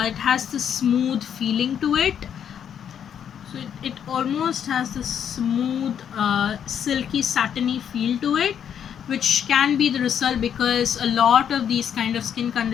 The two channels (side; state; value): right; quieter; 8.6 dB